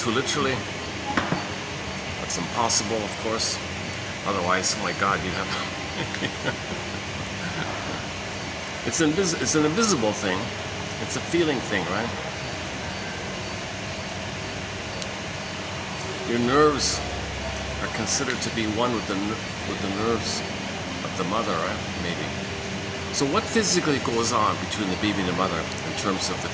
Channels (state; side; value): identical; both; correlation 1.00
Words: literally. That's impossible, of course. Otherwise, oh my God, you have. It's an invisible thing. It's a feeling thing, right? Your nerves are considered to be one with the nerves of the mother, right? Maybe. So what physically goes on between the baby and the mother in terms of the